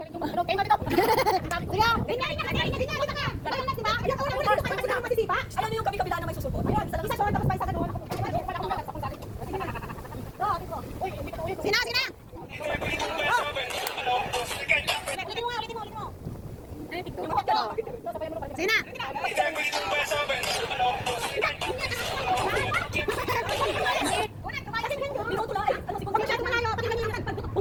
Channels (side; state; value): both; identical; correlation 1.00